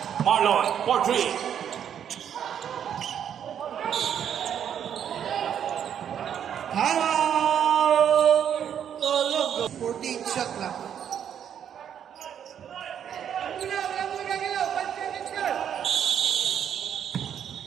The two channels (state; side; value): quieter; left; 9.0 dB